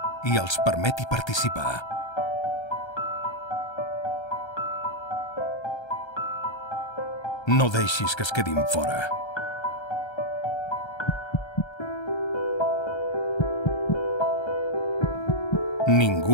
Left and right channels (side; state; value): right; late; 1.3 ms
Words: i els permeti participar. No deixis que es quedin fora.